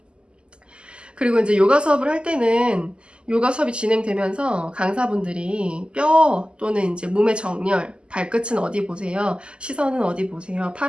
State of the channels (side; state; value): left; late; 0.050 ms